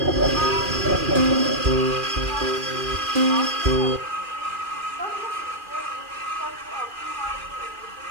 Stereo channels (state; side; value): late; left; 2.4 ms